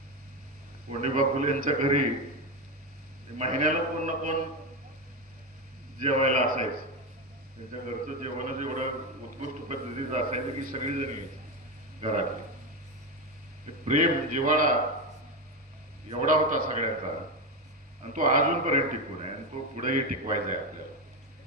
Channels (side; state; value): both; normal; correlation 0.14